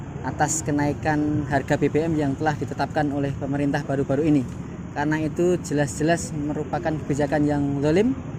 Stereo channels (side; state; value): both; identical; correlation 1.00